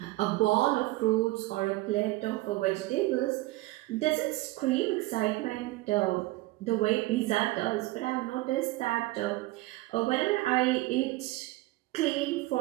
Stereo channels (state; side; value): quieter; left; 19.2 dB